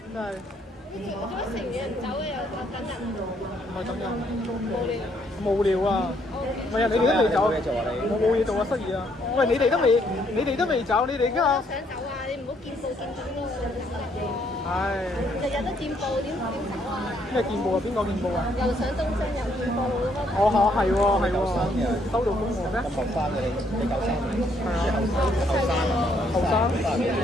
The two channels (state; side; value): normal; both; correlation 0.70